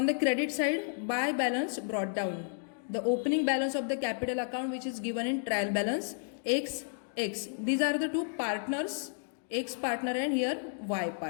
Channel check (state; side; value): silent; right; digital silence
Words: the credit side, buy balance brought down. The opening balance of the capital account which is given in trial balance X. These are the two partners, X partner and here Y